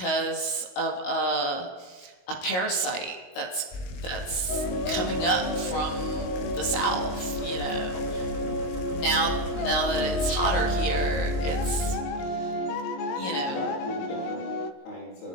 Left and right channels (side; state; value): right; late; 22 ms